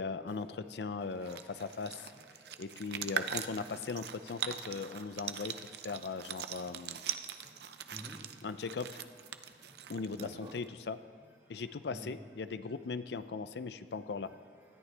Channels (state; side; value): normal; both; correlation 0.09